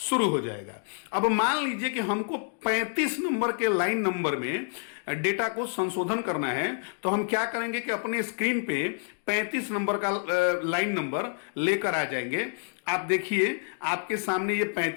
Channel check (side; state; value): right; silent; digital silence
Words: हो जाएगा। अब मान लीजिए कि हमको 35 नंबर के लाइन नंबर में डेटा को संशोधन करना है, तो हम क्या करेंगे कि अपने स्क्रीन पे 35 नंबर का लाइन नंबर लेकर आ जाएंगे। आप देखिए आपके सामने ये